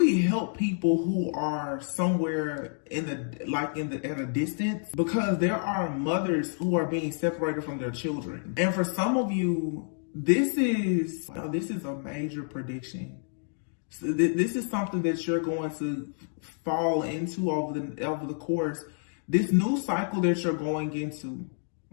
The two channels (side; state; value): right; silent; 59 dB below the other